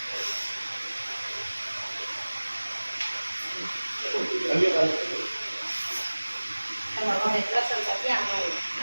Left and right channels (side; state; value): both; inverted; correlation -1.00